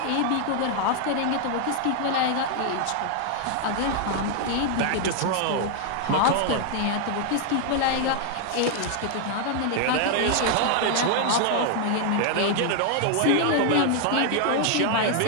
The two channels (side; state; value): both; different; correlation 0.00